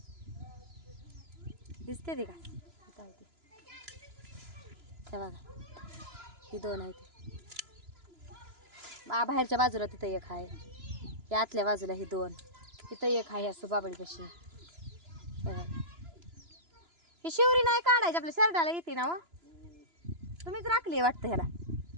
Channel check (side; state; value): left; late; 2.9 ms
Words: दिसते ती का बघा ही दोन आहे ती बाहेरच्या बाजूला तिथं एक आहे या आतल्या बाजूला ही दोन तिथं एक आहे असं बाबळीपाशी ही शिवरी नाही काढायची आपल्या शर्टाला येते ना तुम्हीच राखली वाटतं ह्याला